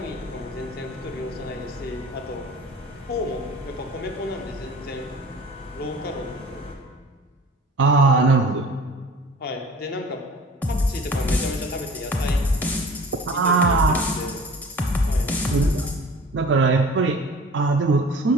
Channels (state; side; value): normal; both; correlation 0.44